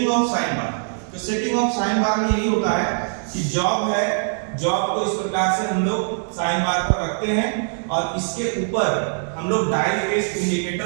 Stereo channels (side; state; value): left; silent; digital silence